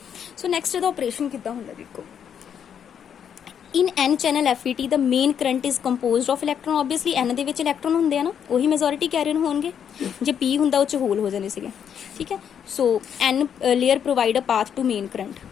ਸੋ ਨੈਕਸਟ ਇਹਦਾ ਆਪਰੇਸ਼ਨ ਕਿੱਦਾਂ ਹੁੰਦਾ ਦੇਖੋ। ਇਨ N channel FET the main current is composed of electron. Obviously N ਦੇ ਵਿੱਚ ਇਲੈਕਟ੍ਰੋਨ ਹੁੰਦੇ ਆ ਨਾ, ਉਹੀ ਮੈਜੋਰਿਟੀ ਕੈਰੀਅਰ ਹੋਣਗੇ। ਜੇ P ਹੁੰਦਾ ਉਹ 'ਚ ਹੋਲ ਹੋ ਜਾਣੇ ਸੀਗੇ, ਠੀਕ ਹੈ। So N layer provide a path to main current,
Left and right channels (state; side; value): quieter; right; 8.3 dB